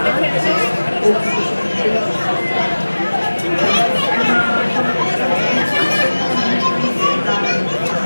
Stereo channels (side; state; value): both; inverted; correlation -1.00